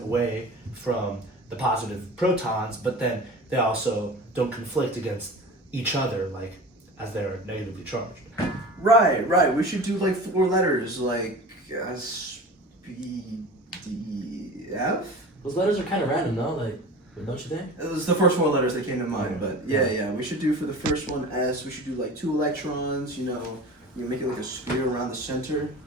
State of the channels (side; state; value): both; normal; correlation 0.36